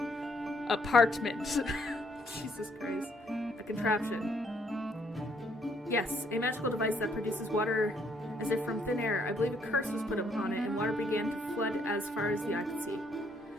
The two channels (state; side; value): normal; both; correlation 0.69